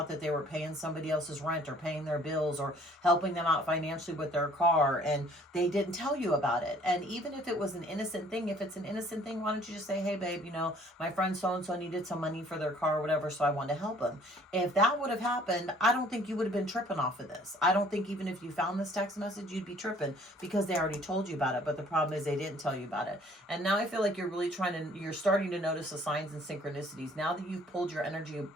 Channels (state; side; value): normal; both; correlation 0.57